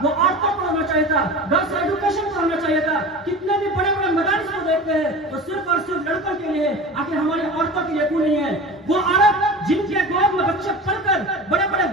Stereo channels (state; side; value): normal; both; correlation 0.33